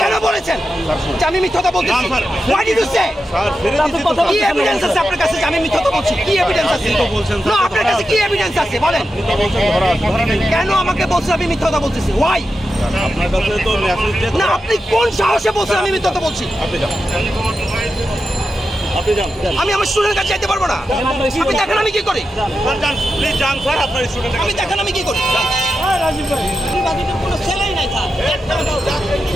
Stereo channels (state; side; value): normal; both; correlation 0.89